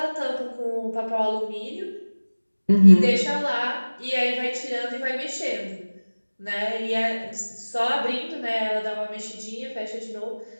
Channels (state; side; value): inverted; both; correlation -1.00